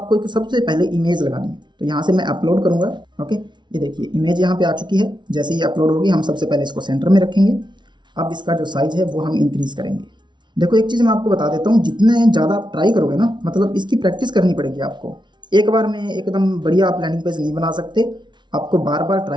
एक सबसे पहले इमेज लगानी है। तो यहाँ से मैं अपलोड करूँगा। ओके, ये देखिए इमेज यहाँ पे आ चुकी है। जैसे ही अपलोड होगी हम सबसे पहले इसको सेंटर में रखेंगे। अब इसका जो साइज़ है वो हम इंक्रीज़ करेंगे। देखो, एक चीज़ मैं आपको बता देता हूँ, जितने ज़्यादा आप ट्राई करोगे ना, मतलब इसकी प्रैक्टिस करनी पड़ेगी आपको। एक बार में एकदम बढ़िया आप लैंडिंग पेज नहीं बना सकते, आपको बार बार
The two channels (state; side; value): late; left; 0.22 ms